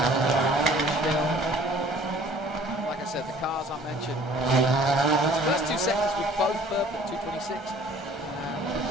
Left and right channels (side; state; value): both; normal; correlation 0.53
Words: Like I said, the cars I mentioned. The first 2 seconds were both purple at 2:26.